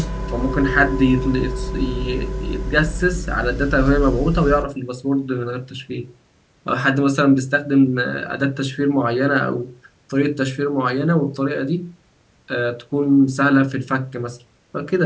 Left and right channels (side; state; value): both; identical; correlation 1.00